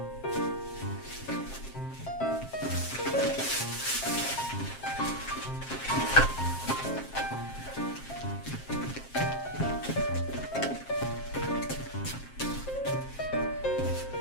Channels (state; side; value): late; right; 7.5 ms